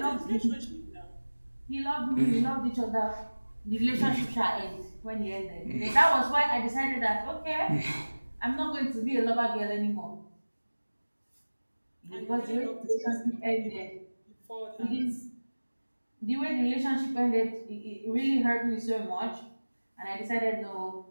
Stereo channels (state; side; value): inverted; both; correlation -1.00